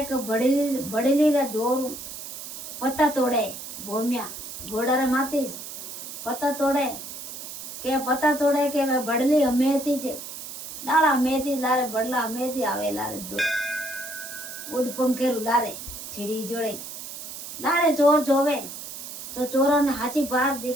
के बड़ेली रा जोर पत्ता तोड़े। भोमिया घोड़ा रे मातीस पत्ता तोड़े के वे बड़ली हमेती जे डाला हमेती लारे बड़ला हमेती आवे लारे दो उड़ पंखेरु लारे छिड़ी जोड़े लारे चोर जोवे तो चोरों ने हाची बार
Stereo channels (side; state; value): right; noise; hiss, 10 dB below the sound